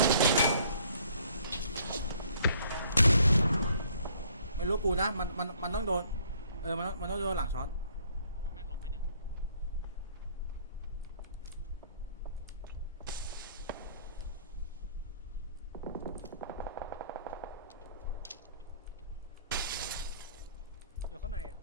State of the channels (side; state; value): both; inverted; correlation -0.60